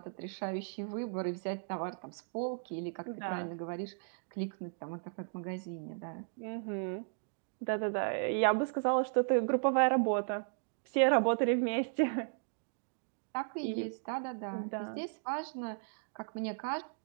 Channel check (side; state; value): left; silent; digital silence